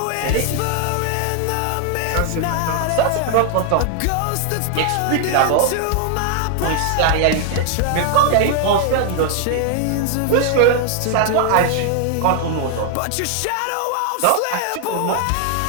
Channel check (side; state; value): both; different; correlation 0.00